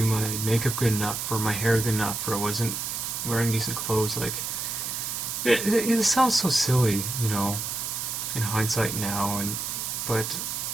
my makeup good enough, or my hair good enough, or I wasn't wearing decent clothes. Like, it sounds so silly, you know, in hindsight now, but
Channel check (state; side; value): noise; right; hiss, 3 dB below the sound